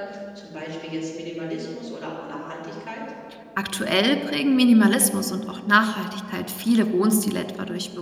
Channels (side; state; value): both; identical; correlation 1.00